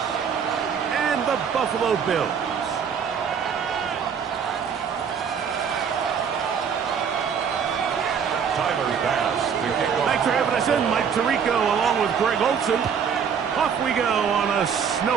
and the Buffalo Bills. Thanks for having us in, Mike Tirico, along with Greg Olson. Off we go on a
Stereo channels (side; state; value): left; quieter; 7.1 dB